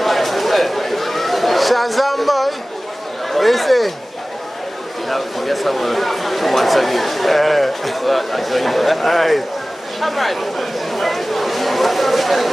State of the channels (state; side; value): normal; both; correlation 0.97